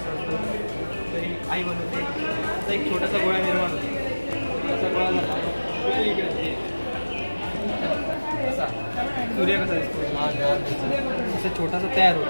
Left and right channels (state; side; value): inverted; both; correlation -1.00